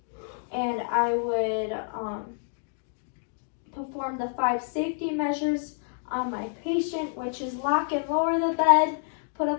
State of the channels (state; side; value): silent; right; digital silence